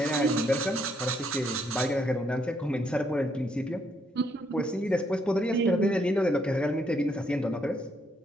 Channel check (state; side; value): normal; both; correlation 0.73